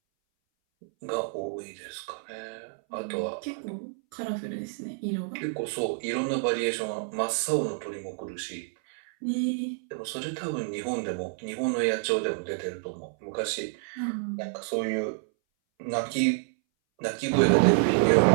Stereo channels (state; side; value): silent; left; 59 dB below the other